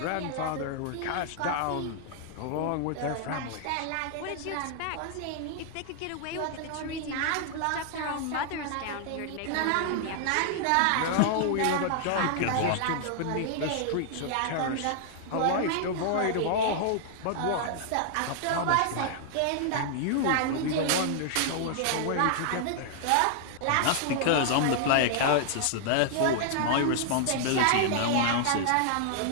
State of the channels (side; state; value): both; different; correlation 0.00